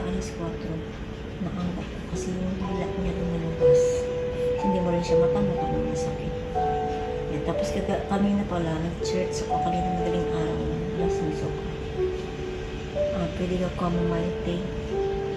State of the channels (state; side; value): identical; both; correlation 1.00